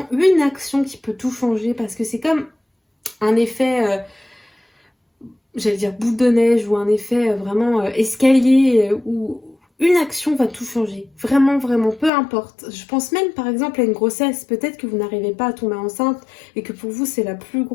une action qui peut tout changer, parce que c'est comme un effet... j'allais dire boule de neige ou un effet vraiment escalier où une action va tout changer. Vraiment, vraiment, peu importe. Je pense même par exemple à une grossesse. Peut-être que vous n'arrivez pas à tomber enceinte et que pour vous c'est la plus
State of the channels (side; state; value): right; drops out; at 12.1 s